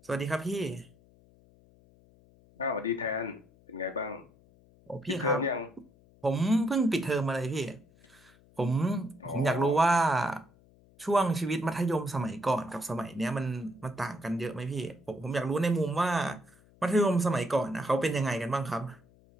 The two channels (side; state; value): left; noise; hum, 28 dB below the sound